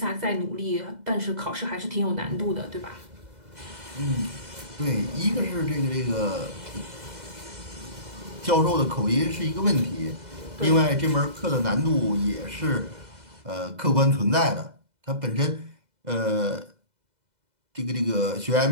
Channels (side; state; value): left; late; 2.0 ms